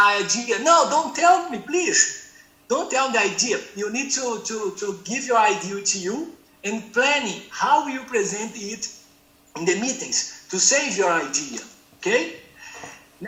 idea. No, don't tell me, please. Don't tell the idea. You need to give your idea to you and planning how you present it in the meetings to save your idea, okay?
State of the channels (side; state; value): both; identical; correlation 1.00